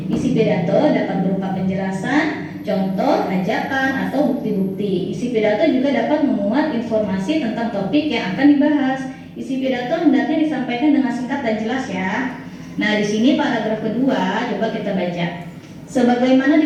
Isi pidato dapat berupa penjelasan, contoh, ajakan, atau bukti-bukti. Isi pidato juga dapat memuat informasi tentang topik yang akan dibahas. Isi pidato hendaknya disampaikan dengan singkat dan jelas ya. Nah, di sini paragraf kedua, coba kita baca. Sebagaimana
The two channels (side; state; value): both; identical; correlation 1.00